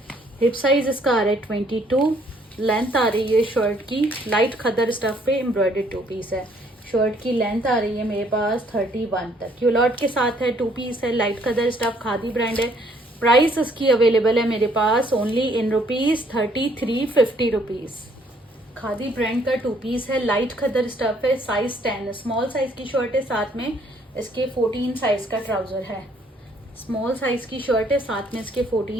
हिप साइज इसका आ रहा है 22, लेंथ आ रही है शर्ट की, लाइट खद्दर स्टफ पे एम्ब्रॉयडर्ड 2 पीस है। शर्ट की लेंथ आ रही है मेरे पास 31 तक, क्यूलॉट के साथ है। 2 पीस है, लाइट खद्दर स्टफ, खादी ब्रांड है। प्राइस इसकी अवेलेबल है मेरे पास only in rupees 3350 rupees. Khadi brand का 2 पीस है, लाइट खद्दर स्टफ है, साइज 10, स्मॉल साइज की शर्ट है, साथ में इसके 14 साइज का ट्राउजर है। स्मॉल साइज की शर्ट है, साथ में इसके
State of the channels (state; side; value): normal; both; correlation 0.65